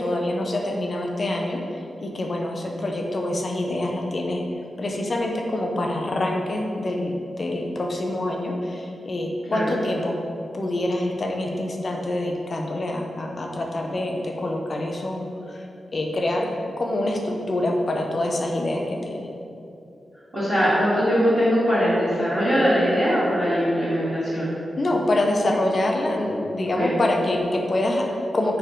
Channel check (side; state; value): both; normal; correlation 0.90